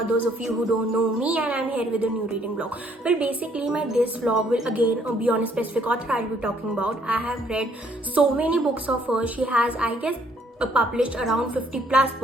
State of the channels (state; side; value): normal; both; correlation 0.66